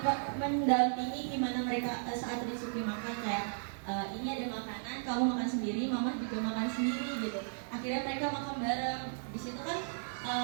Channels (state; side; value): silent; left; digital silence